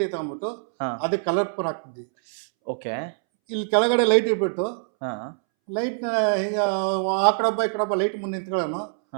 ತಗೊಂಡ್ಬಿಟ್ಟು ಅದಕ್ಕೆ ಕಲರ್ ಪೂರ್ ಹಾಕ್ತಿದ್ವಿ. ಓಕೆ. ಇಲ್ಲಿ ಕೆಳಗಡೆ ಲೈಟ್ ಇಟ್ಬಿಟ್ಟು ಲೈಟ್ನ ಹಿಂಗೆ ಆ ಕಡೆ ಒಬ್ಬ ಈ ಕಡೆ ಒಬ್ಬ ಲೈಟ್ ಮುಂದೆ ನಿಂತ್ಕೊಳ್ಳೋನು.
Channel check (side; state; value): left; silent; 62 dB below the other